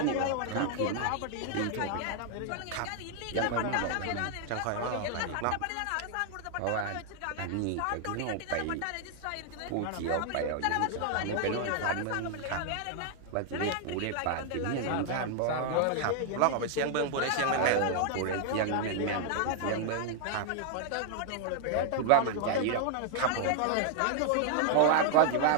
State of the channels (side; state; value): both; different; correlation 0.00